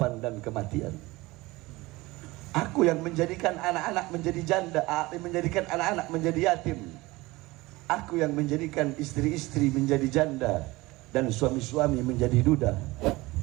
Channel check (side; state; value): left; quieter; 20.8 dB